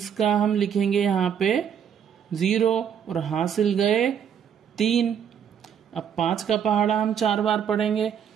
का हम लिखेंगे यहाँ पे 0 और हासिल गए 3। अब 5 का पहाड़ा हम 4 बार पढ़ेंगे।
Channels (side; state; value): left; quieter; 8.3 dB